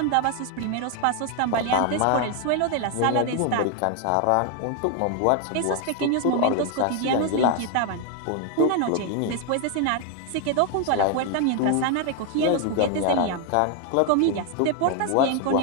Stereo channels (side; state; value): both; different; correlation 0.01